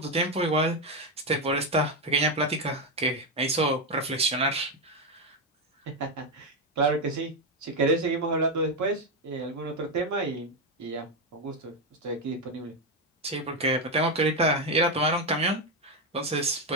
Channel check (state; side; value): normal; both; correlation 0.07